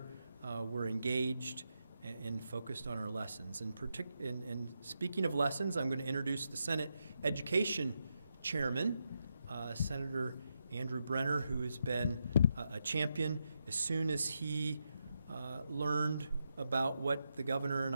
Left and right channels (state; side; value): inverted; both; correlation -0.84